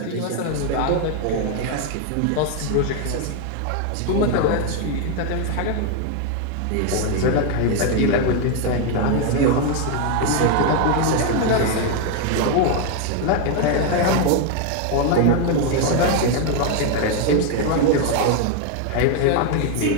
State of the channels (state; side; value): different; both; correlation 0.01